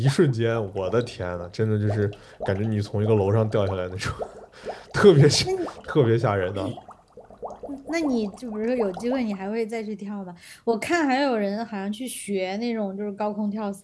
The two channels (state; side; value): identical; both; correlation 1.00